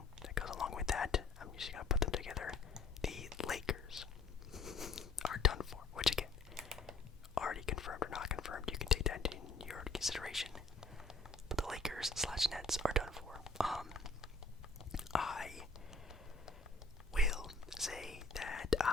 that goes along with that, I'm just going to put them together. The Lakers are done for, which again, already confirmed or not confirmed, you can take that into your consideration. But the Lakers/Nets are done for. I will say that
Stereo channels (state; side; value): quieter; right; 3.6 dB